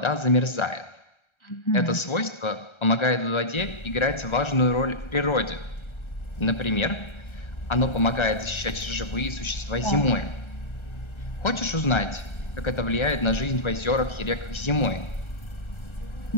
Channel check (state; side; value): late; right; 1.3 ms